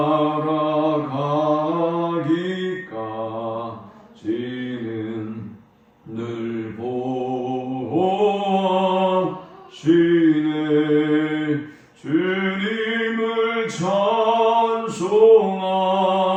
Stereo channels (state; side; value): identical; both; correlation 1.00